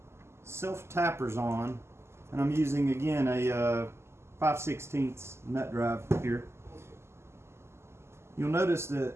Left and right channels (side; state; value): left; late; 0.13 ms